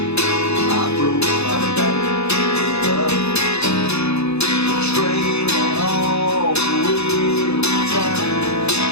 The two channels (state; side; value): late; right; 0.79 ms